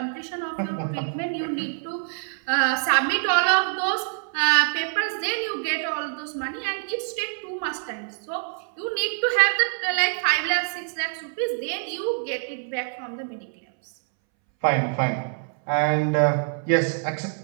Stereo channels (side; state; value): left; silent; 62 dB below the other